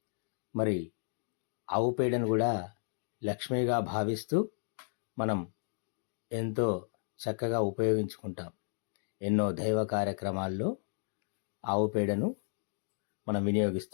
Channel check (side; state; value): right; silent; digital silence